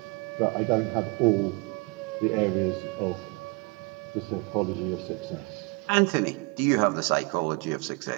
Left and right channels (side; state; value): left; quieter; 29.8 dB